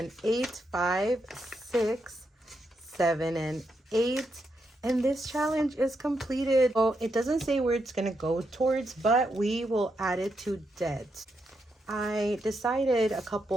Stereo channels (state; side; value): normal; both; correlation 0.82